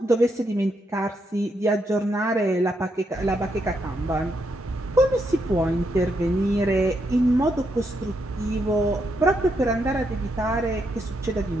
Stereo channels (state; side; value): normal; both; correlation 0.79